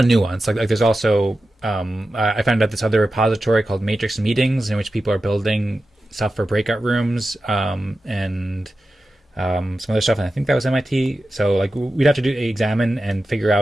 of nuance. Like there's also I found out this other repository called Matrix Meetings, in which people are building stuff for breakout rooms and some other stuff, and I think that was MIT. So like we'd have to examine and figure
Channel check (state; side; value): normal; both; correlation 0.92